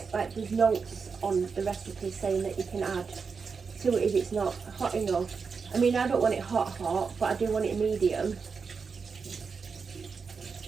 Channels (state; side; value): quieter; left; 5.3 dB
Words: notes on the recipe saying that you can add to it if it's not hot enough. I mean, I don't want it hot, but I do want it medium.